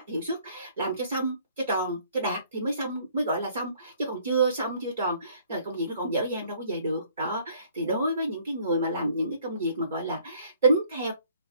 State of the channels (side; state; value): both; inverted; correlation -0.60